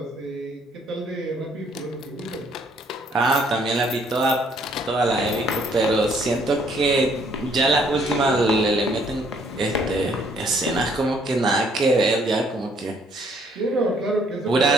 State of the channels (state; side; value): normal; both; correlation 0.65